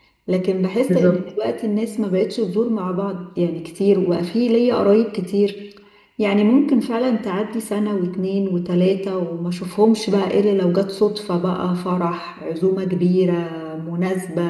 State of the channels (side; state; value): both; identical; correlation 1.00